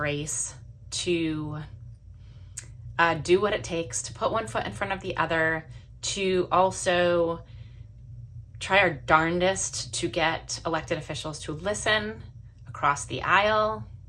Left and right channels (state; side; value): identical; both; correlation 1.00